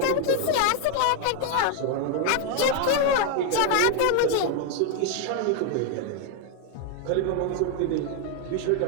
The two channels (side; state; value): both; different; correlation 0.01